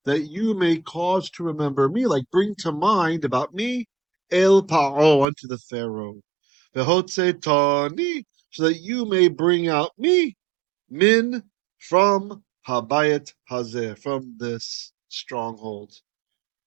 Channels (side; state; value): left; drops out; at 5.2 s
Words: that you may cause to remember me, like bring to mind about me, El Paro, unto the Pharaoh. V'hotzetani, so that you may bring out me, Min, from Habayat Hazeh, from this stronghold,